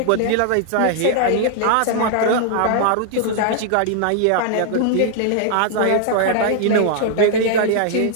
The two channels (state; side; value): different; both; correlation -0.01